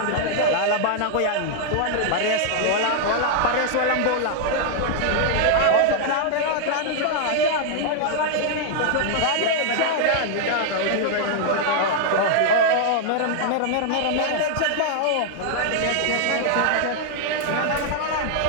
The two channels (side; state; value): both; different; correlation 0.00